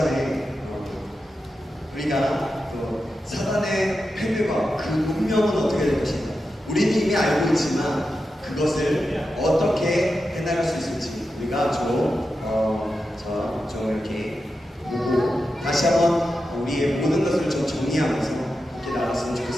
우리가 또 사단의 패배와 그 운명은 어떻게 될 것인가. 우리는 이미 알고 있지만 그것을 어떻게 해나갈 수 있을지 우리가 좀 이렇게 보고 다시 한번 우리의 모든 것을 좀 정리하면서 이렇게 나갔으면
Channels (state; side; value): normal; both; correlation 0.90